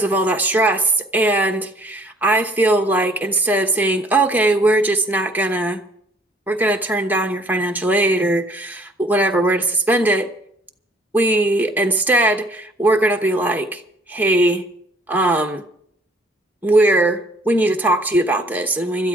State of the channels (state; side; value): normal; both; correlation 0.58